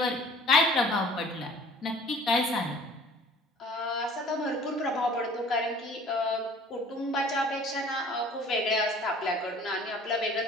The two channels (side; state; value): both; normal; correlation 0.50